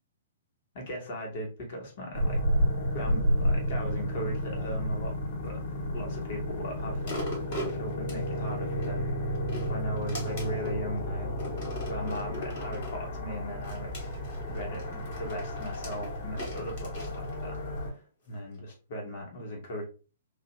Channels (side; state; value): both; inverted; correlation -0.61